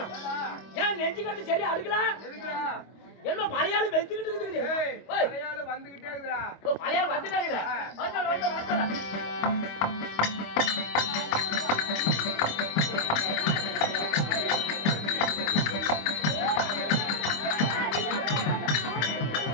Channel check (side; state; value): right; late; 25 ms